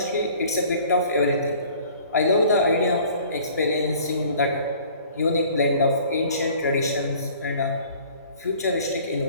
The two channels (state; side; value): inverted; both; correlation -0.51